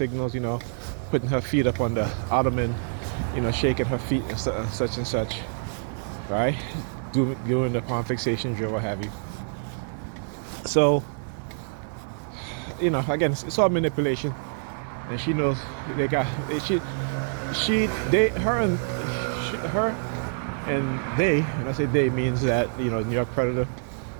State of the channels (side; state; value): left; silent; 61 dB below the other